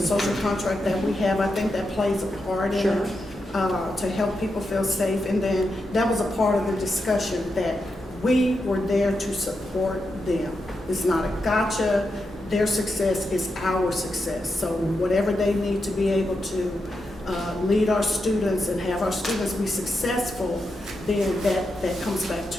social contract that we have. I think that plays a part in Sure. it to help people feel safe. And then that was a part of the discussion that we were there to support them. It's not a gotcha. Their success is our success. So whatever they need to be able to lead our students and have our students be successful, then that comes back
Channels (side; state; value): both; normal; correlation 0.86